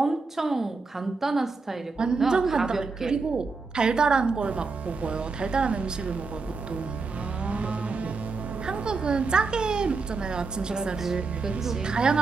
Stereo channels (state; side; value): quieter; left; 4.3 dB